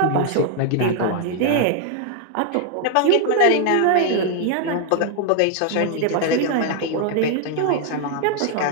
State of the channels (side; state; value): both; different; correlation 0.00